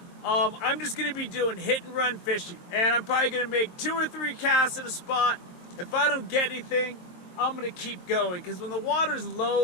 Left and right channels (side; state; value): right; late; 22 ms